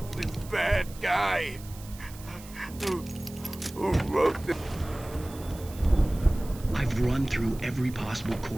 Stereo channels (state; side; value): noise; right; hiss, 19 dB below the sound